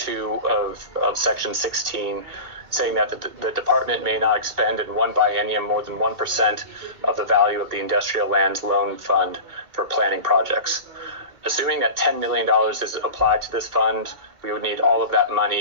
of section 16, saying that the department may not expend in one biennium more than 1% of the value of the industrial lands loan fund for planning projects. Assuming that $10 million is applied to this fund, we would need all of that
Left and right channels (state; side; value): late; left; 2.5 ms